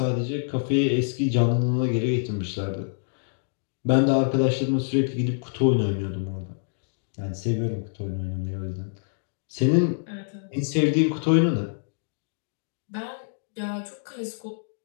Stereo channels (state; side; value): silent; right; digital silence